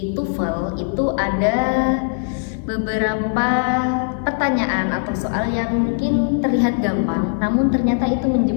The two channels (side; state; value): right; silent; digital silence